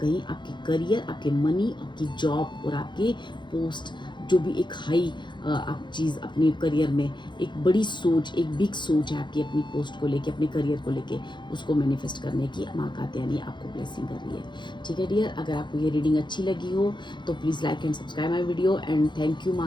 आपके करियर, आपके मनी, आपकी जॉब और आपके पोस्ट, जो भी एक हाई आप चीज़ अपने करियर में, एक बड़ी सोच, एक बिग सोच है आपकी अपनी पोस्ट को लेके, अपने करियर को लेके, उसको मैनिफेस्ट करने की माँ कात्यायनी आपको ब्लेसिंग कर रही है। ठीक है डियर, अगर आपको ये रीडिंग अच्छी लगी हो तो please like and subscribe my video, and thank you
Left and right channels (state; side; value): late; right; 0.22 ms